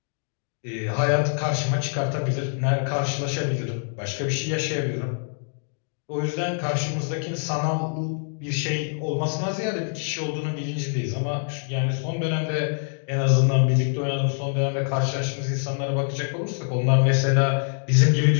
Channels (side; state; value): right; silent; 62 dB below the other